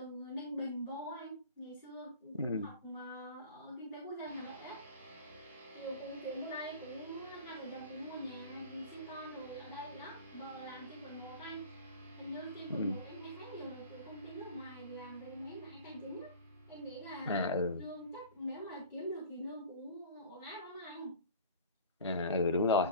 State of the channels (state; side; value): inverted; both; correlation -0.39